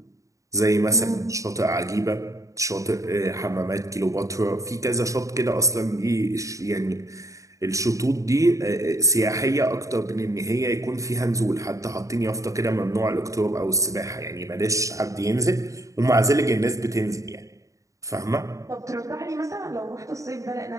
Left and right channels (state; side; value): late; left; 0.16 ms